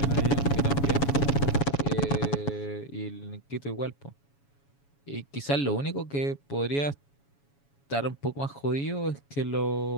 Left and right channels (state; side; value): late; right; 7.2 ms